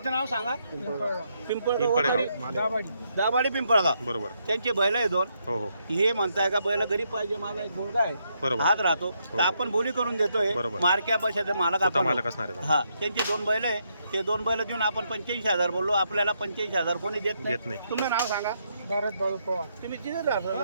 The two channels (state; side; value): inverted; both; correlation -0.77